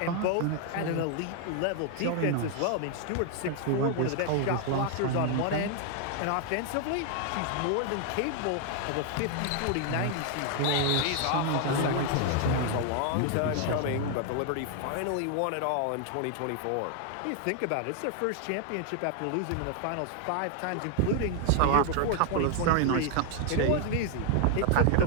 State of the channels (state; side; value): different; both; correlation 0.00